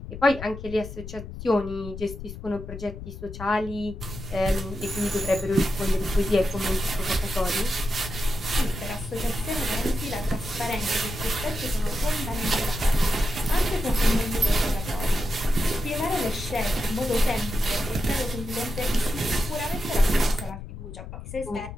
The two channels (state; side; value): noise; left; rumble, 10 dB below the sound